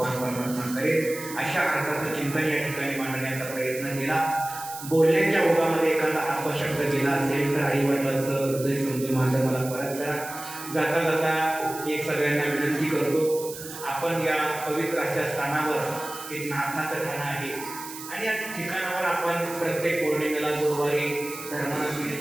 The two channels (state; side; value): noise; right; hiss, 12 dB below the sound